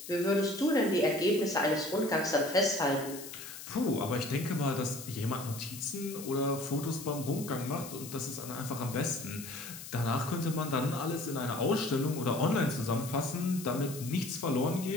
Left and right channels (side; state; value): left; noise; hiss, 12 dB below the sound